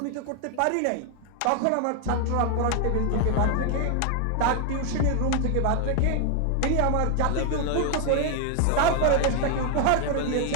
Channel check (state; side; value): different; both; correlation 0.00